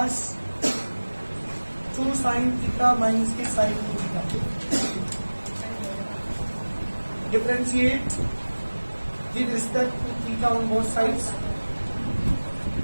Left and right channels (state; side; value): inverted; both; correlation -1.00